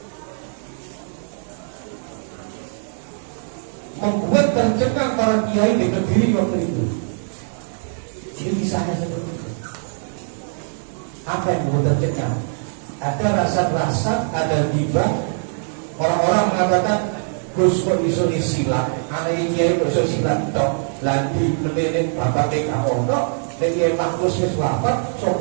Membuat tercengang para kiai di Kediri waktu itu. Ini kisahnya seperti itu. Apa yang membuat tercengang? Ada rasa-rasa, ada tiba. Orang-orang mengatakan, Gus kok iso silat, anak kiai kok iso silat tok. Lagi melihat bapak TK Ono, Kiai Maklus wis wafat,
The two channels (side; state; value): left; silent; 59 dB below the other